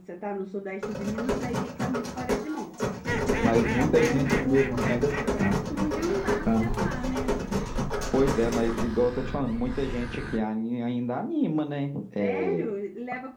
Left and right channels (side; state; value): both; identical; correlation 1.00